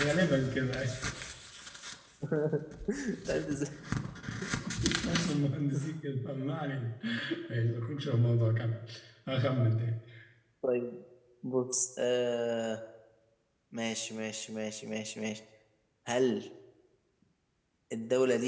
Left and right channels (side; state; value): both; identical; correlation 1.00